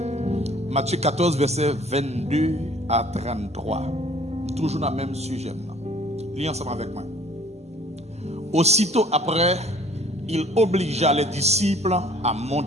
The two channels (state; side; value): normal; both; correlation 0.54